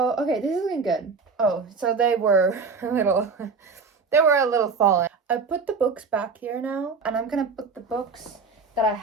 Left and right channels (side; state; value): left; quieter; 4.8 dB